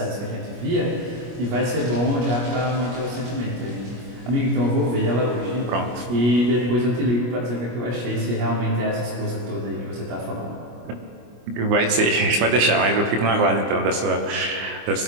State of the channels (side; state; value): left; late; 25 ms